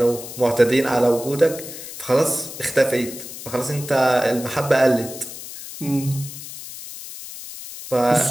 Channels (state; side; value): noise; left; hiss, 12 dB below the sound